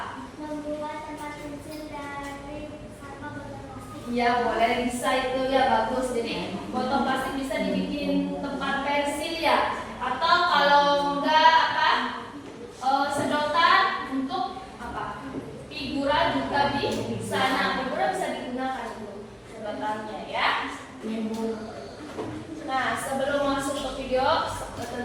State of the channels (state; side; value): identical; both; correlation 1.00